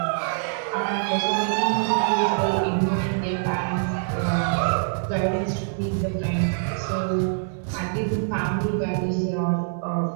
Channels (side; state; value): left; silent; digital silence